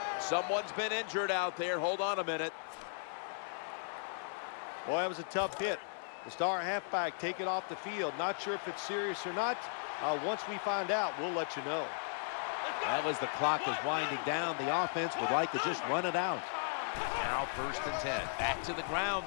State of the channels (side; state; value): right; silent; 54 dB below the other